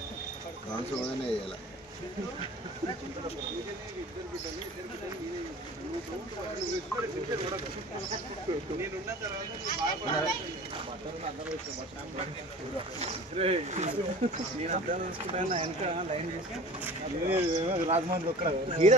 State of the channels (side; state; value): both; normal; correlation 0.41